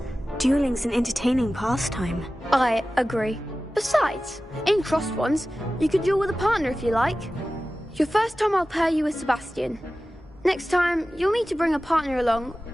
Dueling's an entertaining pastime. I agree. Besides, in crossed wands, you could duel with a partner if you like. Your first time I'll pair you with Sebastian. Next time, you'll need to bring a partner along,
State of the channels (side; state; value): both; normal; correlation 0.95